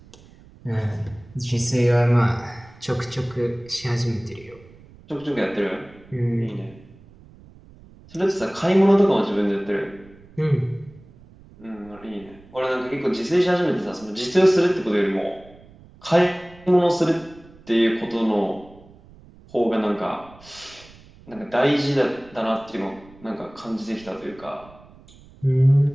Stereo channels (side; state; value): right; noise; rumble, 24 dB below the sound